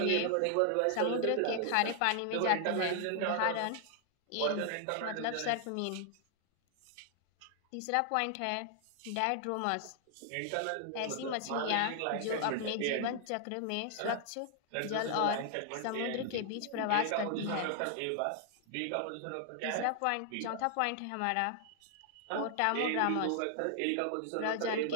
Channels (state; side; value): different; both; correlation 0.00